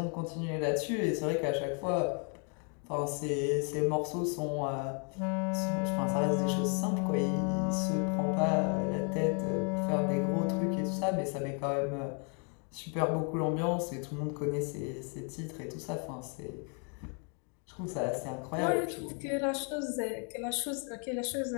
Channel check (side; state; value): right; quieter; 38.3 dB